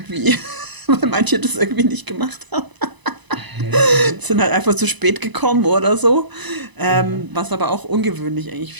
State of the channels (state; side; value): late; left; 1.0 ms